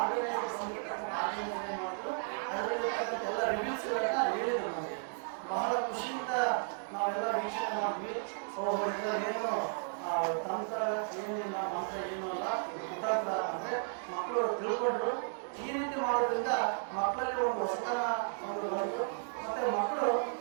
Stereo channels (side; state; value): left; silent; 55 dB below the other